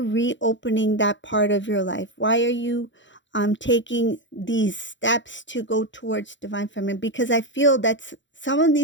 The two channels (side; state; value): right; late; 0.54 ms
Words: that part of your life? Why are you taking these steps to go towards divine feminine? Because I feel that some of